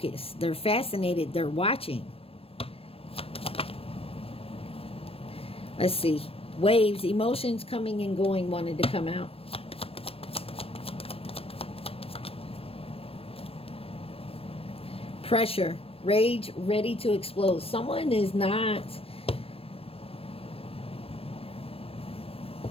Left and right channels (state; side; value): late; right; 0.28 ms